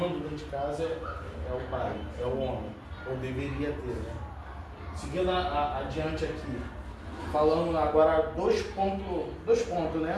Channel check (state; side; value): identical; both; correlation 1.00